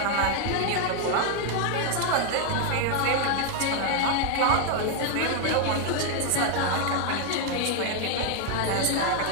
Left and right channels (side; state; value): both; different; correlation 0.00